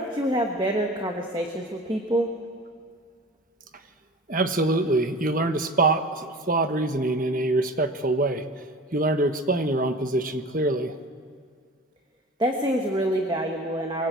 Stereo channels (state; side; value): normal; both; correlation 0.39